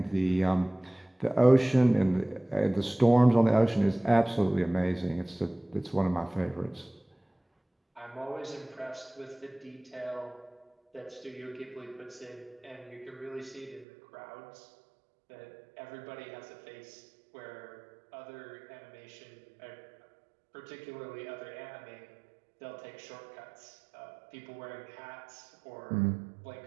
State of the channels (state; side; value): drops out; left; at 13.9 s